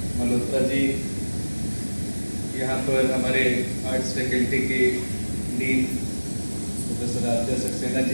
मल्होत्रा जी, यहाँ पर हमारे आर्ट्स फैकल्टी के डीन प्रोफेसर आद्या सक्सेना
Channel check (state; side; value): inverted; both; correlation -1.00